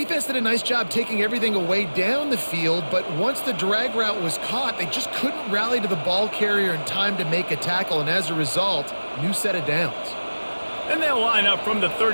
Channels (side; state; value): both; inverted; correlation -1.00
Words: did a nice job taking everything away down the field, but once the drag route was caught, they just couldn't rally to the ball carrier in time to make a tackle, and as a result, new set of downs. And they'll line up from the